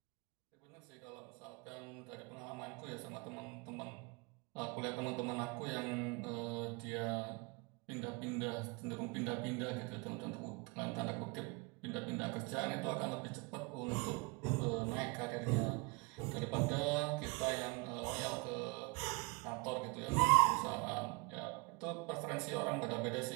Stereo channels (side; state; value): left; quieter; 28.4 dB